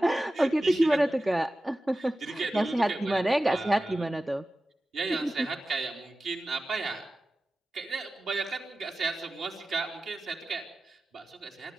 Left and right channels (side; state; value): both; normal; correlation 0.95